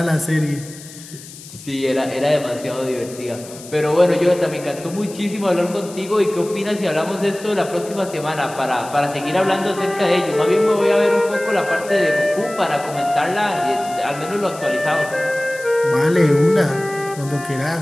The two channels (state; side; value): noise; left; hiss, 17 dB below the sound